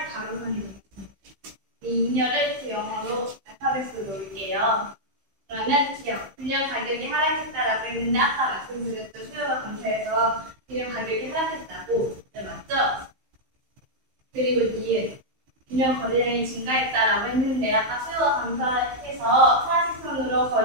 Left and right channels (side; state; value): left; late; 15 ms